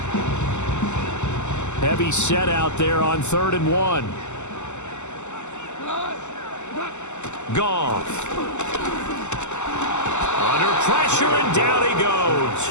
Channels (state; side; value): late; right; 0.83 ms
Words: Heavy set out there on 3rd and 1. Goff. Under pressure, and down he goes.